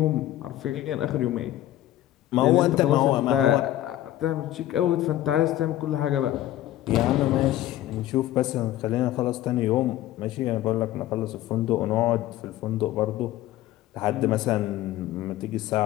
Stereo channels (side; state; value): right; quieter; 13.9 dB